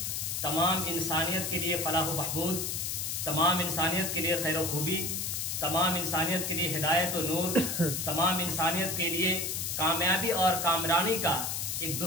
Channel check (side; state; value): left; noise; hiss, 2 dB below the sound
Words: تمام انسانیت کے لیے فلاح و بہبود، تمام انسانیت کے لیے خیر و خوبی، تمام انسانیت کے لیے ہدایت و نور، تمام انسانیت کے لیے کامیابی اور کامرانی کا ایک